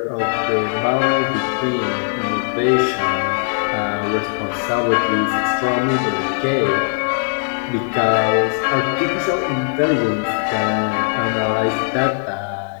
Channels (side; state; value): right; silent; digital silence